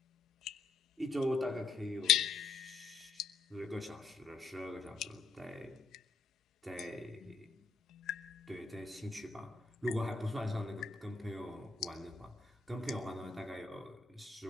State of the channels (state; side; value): quieter; right; 4.3 dB